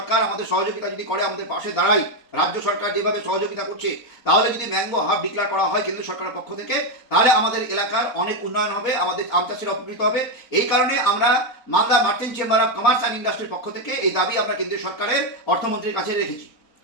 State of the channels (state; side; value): late; right; 4.0 ms